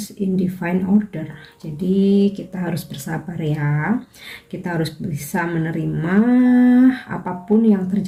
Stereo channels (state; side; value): identical; both; correlation 1.00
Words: in divine order. Jadi kita harus bersabar ya. Kita harus bisa menerima apapun yang